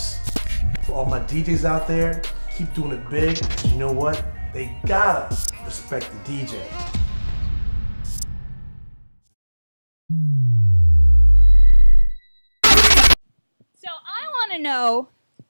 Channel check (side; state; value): both; inverted; correlation -1.00